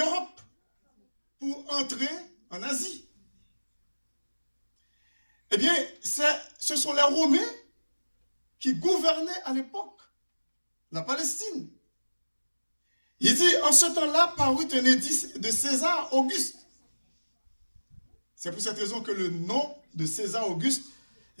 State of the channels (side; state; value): both; inverted; correlation -1.00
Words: pour entrer en Asie. Eh bien, ce sont les Romains qui gouvernaient à l'époque la Palestine. Il dit, en ce temps-là, parut un édit de César Auguste. C'est pour cette raison que le nom de César Auguste,